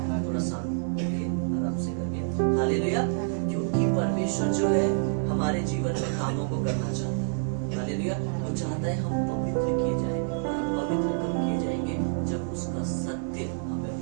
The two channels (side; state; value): left; silent; digital silence